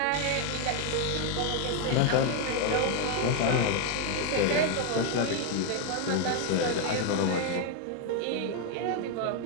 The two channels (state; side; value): different; both; correlation 0.01